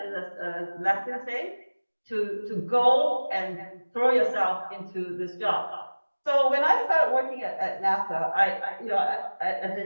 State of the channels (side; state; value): both; inverted; correlation -1.00